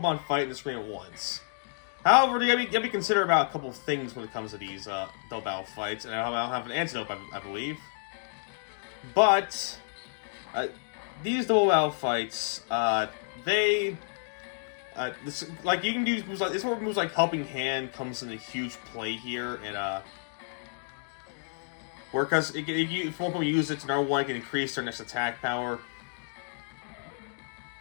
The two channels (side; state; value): right; silent; digital silence